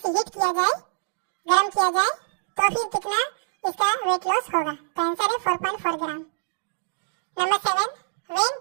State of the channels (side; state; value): left; silent; digital silence